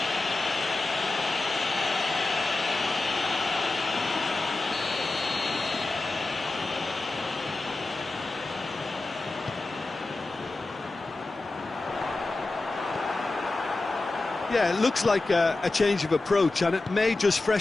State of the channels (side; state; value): right; quieter; 3.2 dB